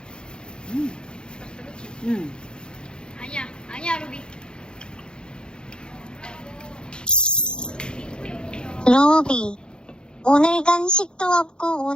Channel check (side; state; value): right; late; 0.049 ms